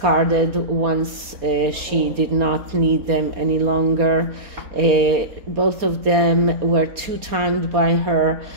once she did not need them any longer. Both of them were two-timed by her.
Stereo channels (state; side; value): late; left; 4.3 ms